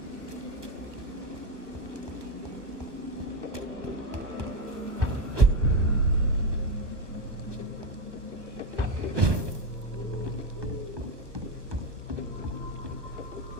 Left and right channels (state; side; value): late; left; 1.2 ms